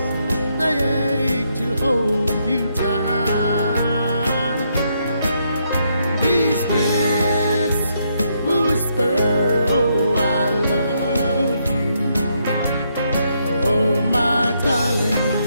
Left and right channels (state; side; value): inverted; both; correlation -0.76